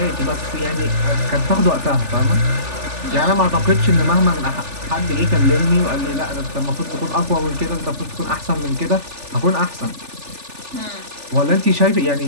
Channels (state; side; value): late; left; 3.4 ms